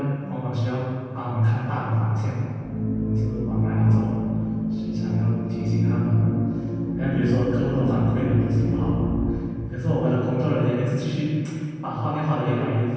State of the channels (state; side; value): identical; both; correlation 1.00